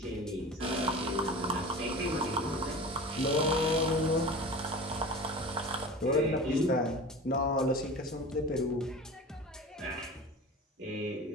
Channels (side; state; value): both; normal; correlation 0.35